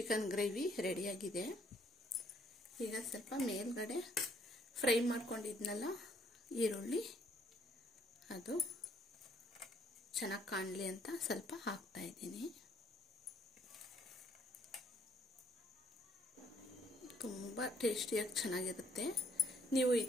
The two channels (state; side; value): normal; both; correlation 0.65